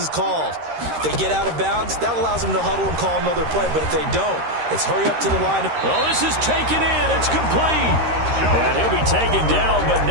called. If they get out of bounds, that allows them to huddle and call another play, but if they don't, it's hurry up to the line. Oh, this is taken in. It's complete. And he'll be taken down, but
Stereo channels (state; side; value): late; left; 13 ms